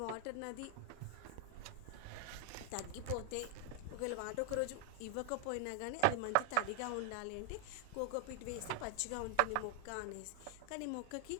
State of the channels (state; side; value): different; both; correlation 0.00